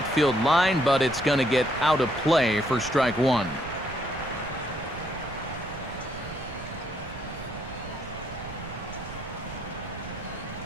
field line, but it's going to get out of play for strike 1.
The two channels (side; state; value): right; noise; rumble, 12 dB below the sound